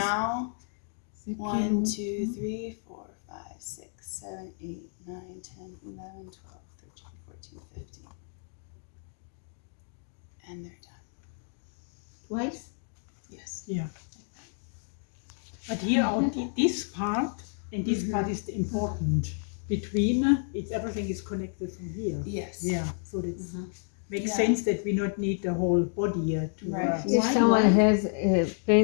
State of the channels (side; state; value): right; silent; 56 dB below the other